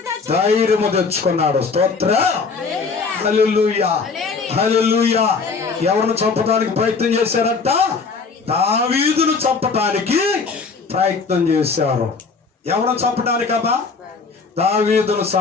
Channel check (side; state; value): right; quieter; 4.8 dB